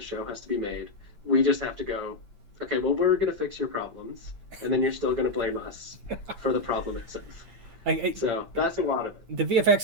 has to be made. We just have to go, okay, well, we're gonna fix your problems, and then you're still gonna blame us for the problem itself. So that's a lot of it. The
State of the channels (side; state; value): left; late; 8.7 ms